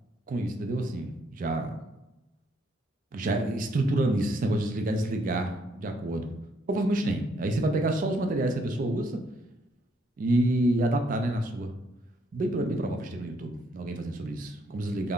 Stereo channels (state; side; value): normal; both; correlation 0.71